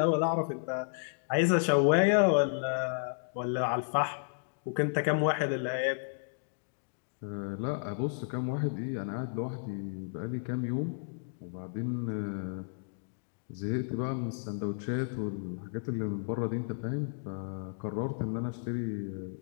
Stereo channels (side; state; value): right; silent; digital silence